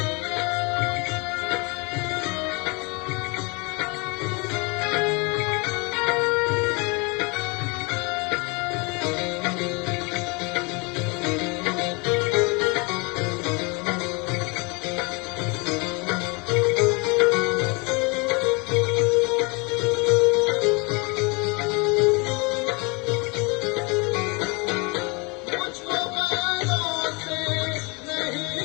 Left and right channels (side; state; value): right; quieter; 29.5 dB